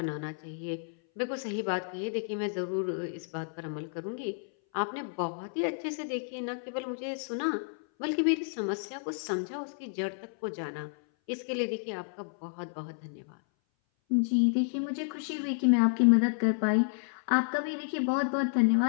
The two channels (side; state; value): right; silent; 57 dB below the other